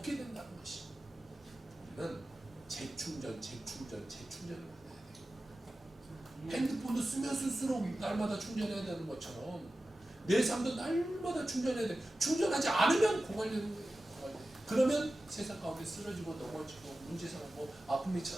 된다는 것이. 우리는 재충전을 받아야 돼요. 핸드폰도 쓰면 쓸수록 날마다 충전해야 되는 것처럼 내 삶도 날마다 충전해야 돼. 충전하지 않으면 고갈되는 거예요. 그러면 세상 가운데 쓰러지고 넘어지고 문제 생기고 아픔이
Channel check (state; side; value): normal; both; correlation 0.94